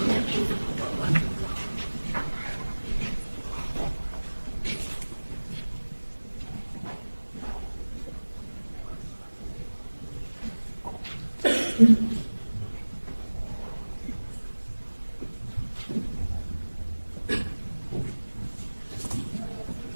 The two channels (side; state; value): both; inverted; correlation -1.00